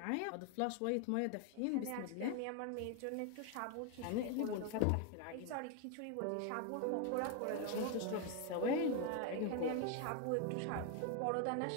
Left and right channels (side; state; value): both; different; correlation 0.01